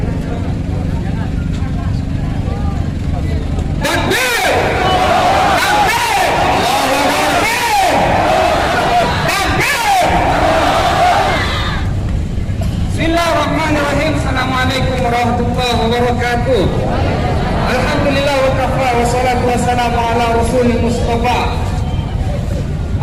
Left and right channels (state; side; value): identical; both; correlation 1.00